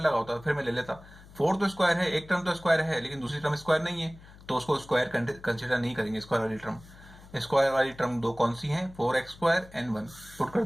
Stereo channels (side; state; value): left; noise; hum, 21 dB below the sound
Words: लगा होता फिर मैं ले लेता। 4 तो स्क्वायर है, एक टर्म तो स्क्वायर है, लेकिन दूसरी टर्म स्क्वायर नहीं है, तो उसको स्क्वायर कंसिडर नहीं करेंगे। स्क्वायर वाली टर्म 2 कौन सी है, 4x² एंड 1 पुट कर